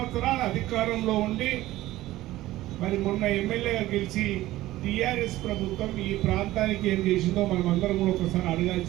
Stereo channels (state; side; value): quieter; left; 16.3 dB